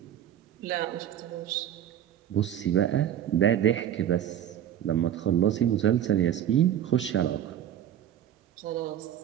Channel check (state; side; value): quieter; left; 10.6 dB